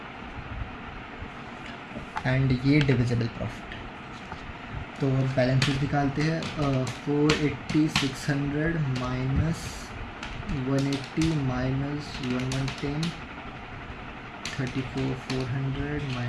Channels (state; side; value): identical; both; correlation 1.00